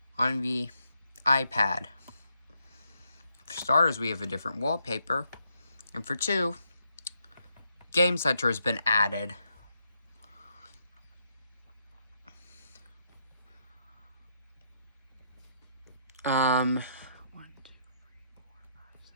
on the iPad. For starters, we have a different wallpaper. And for two, Game Center has been added.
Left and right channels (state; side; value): inverted; both; correlation -0.77